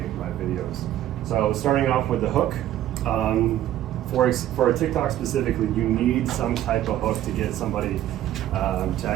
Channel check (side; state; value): left; quieter; 12.7 dB